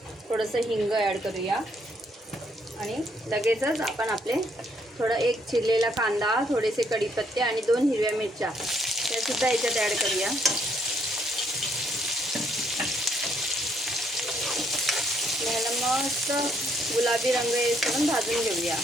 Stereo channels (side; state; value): both; normal; correlation 0.70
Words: थोडंसं हिंग ॲड करूया आणि लगेचच आपण आपले एक चिरलेला कांदा, थोडेसे कढीपत्ते आणि 2 हिरव्या मिरच्या त्यासुद्धा ह्याच्यात ॲड करूया. ह्याला मस्त गुलाबी रंग येईपर्यंत भाजून घेऊया.